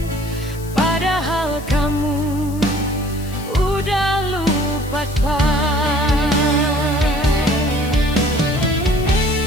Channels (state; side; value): noise; left; hiss, 18 dB below the sound